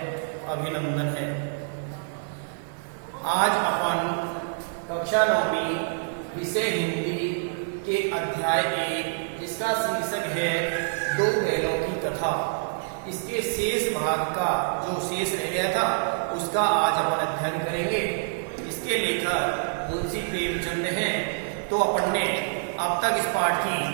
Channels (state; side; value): silent; left; 60 dB below the other